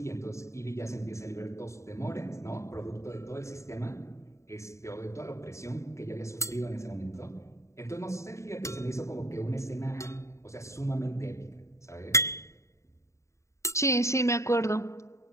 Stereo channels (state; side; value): late; right; 0.14 ms